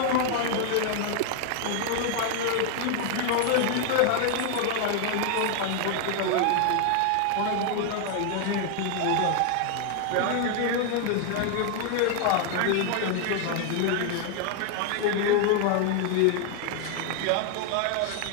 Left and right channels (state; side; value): different; both; correlation 0.00